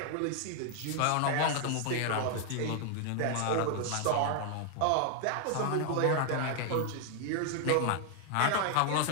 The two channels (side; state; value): both; different; correlation 0.00